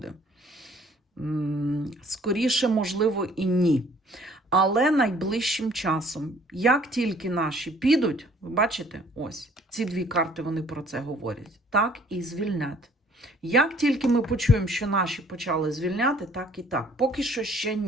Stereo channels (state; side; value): normal; both; correlation 0.57